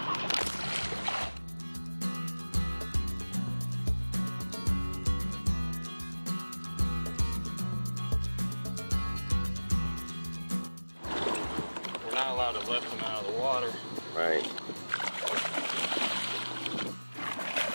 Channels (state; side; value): inverted; both; correlation -1.00